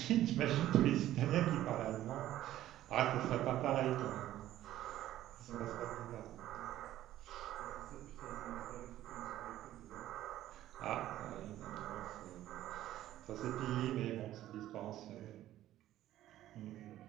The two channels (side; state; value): left; quieter; 13.5 dB